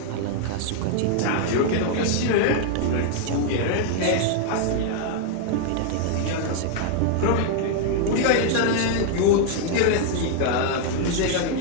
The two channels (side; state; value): both; different; correlation 0.00